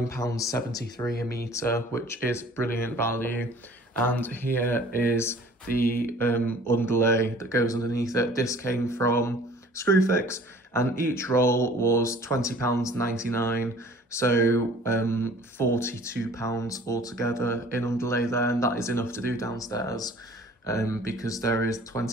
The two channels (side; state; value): both; normal; correlation 0.50